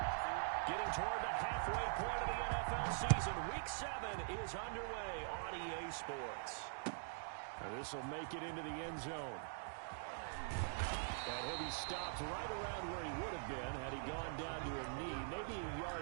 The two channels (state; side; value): silent; left; digital silence